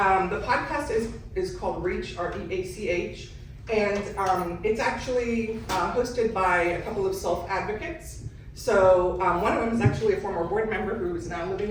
podcast is called Reach, R-E-A-C-H, and it's actually hosted by a couple of self-advocates. So one of them is actually a former board member who is now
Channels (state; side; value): identical; both; correlation 1.00